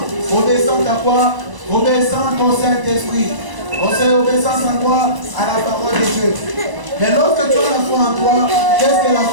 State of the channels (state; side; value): late; left; 1.0 ms